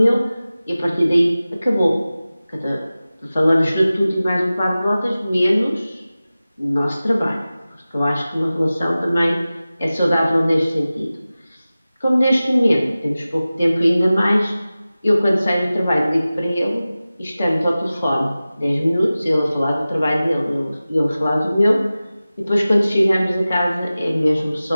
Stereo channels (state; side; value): inverted; both; correlation -0.96